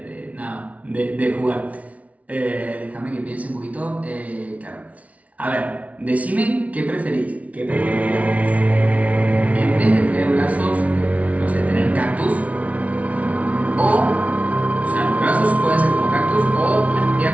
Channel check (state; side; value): late; left; 0.067 ms